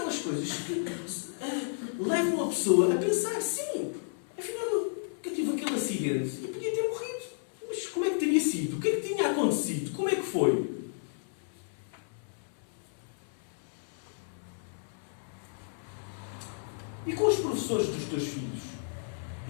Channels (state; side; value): silent; right; 56 dB below the other